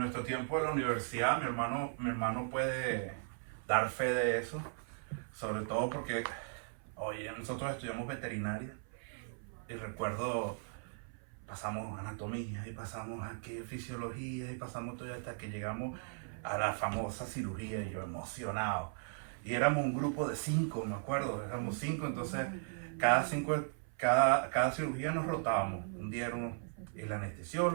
tiempo de la universidad. Mi hermano puede dar fe de eso, sobre todo porque, oye, nosotros estudiamos veterinaria y recuerdo, pasamos anatomía y pasamos aquí fisiología y pasamos todo hasta que llegamos a la famosa cirugía, y yo emocionado. Y éramos un grupo de 5, me acuerdo, éramos 5, entonces cada cirugía nos rotábamos. Un día era el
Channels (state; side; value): silent; left; 53 dB below the other